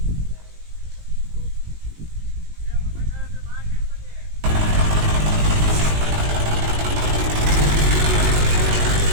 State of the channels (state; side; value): late; left; 19 ms